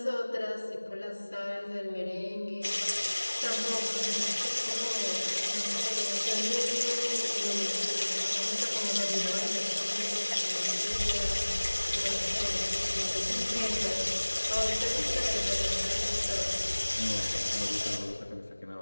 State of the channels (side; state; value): both; inverted; correlation -1.00